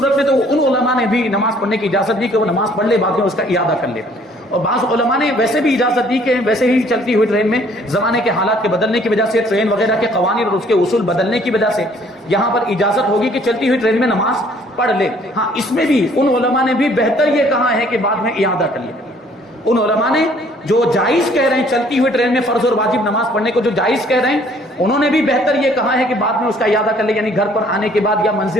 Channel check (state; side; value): normal; both; correlation 0.59